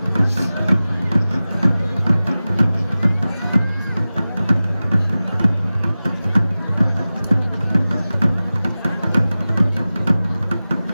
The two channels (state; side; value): inverted; both; correlation -0.96